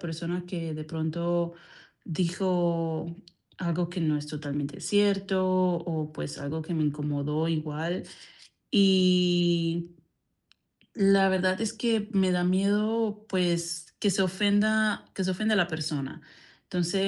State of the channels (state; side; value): identical; both; correlation 1.00